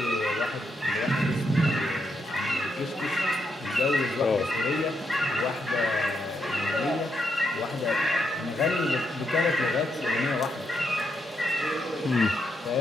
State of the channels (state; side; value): normal; both; correlation 0.80